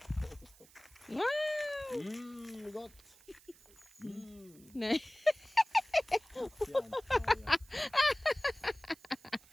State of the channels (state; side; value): noise; right; hiss, 25 dB below the sound